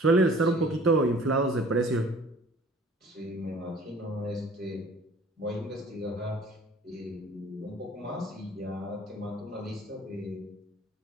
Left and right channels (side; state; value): both; normal; correlation 0.50